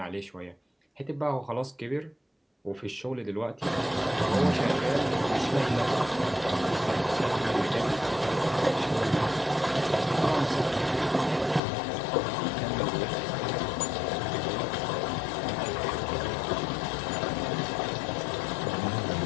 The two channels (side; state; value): right; drops out; at 11.6 s